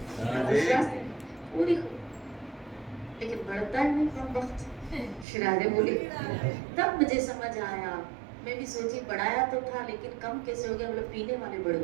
पूरी, लेकिन बढ़ता है नहीं कम वक्त। श्रीराधे बोली। तब मुझे समझ आया, मैं भी सोची बढ़ाया तो था लेकिन कम कैसे हो गया, मतलब पीने वाले बढ़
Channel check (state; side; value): drops out; left; at 5.2 s